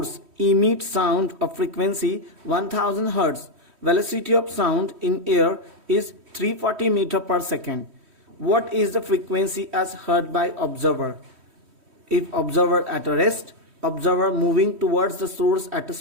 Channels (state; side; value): late; left; 3.1 ms